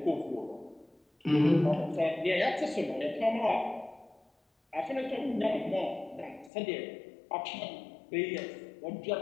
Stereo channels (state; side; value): drops out; right; at 6.5 s